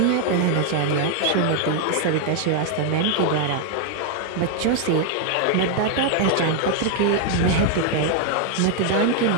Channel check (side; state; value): both; different; correlation 0.00